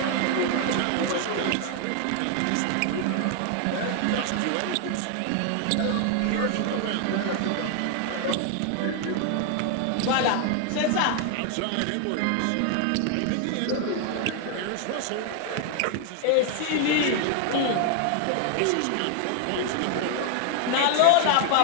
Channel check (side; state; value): both; different; correlation 0.00